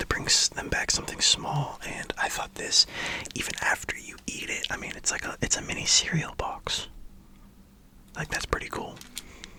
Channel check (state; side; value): identical; both; correlation 1.00